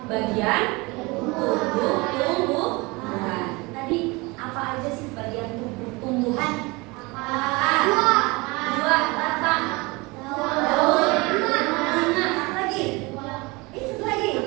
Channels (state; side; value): quieter; left; 25.1 dB